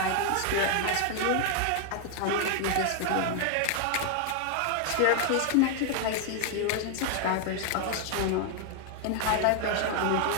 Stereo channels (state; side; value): different; both; correlation 0.00